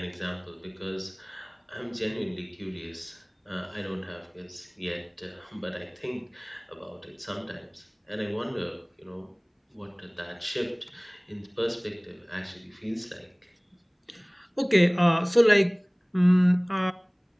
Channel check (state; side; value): identical; both; correlation 1.00